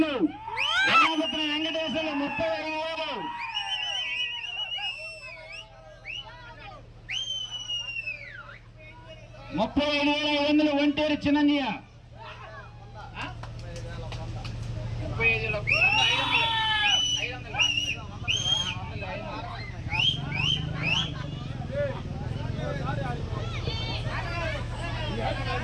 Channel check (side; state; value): both; identical; correlation 1.00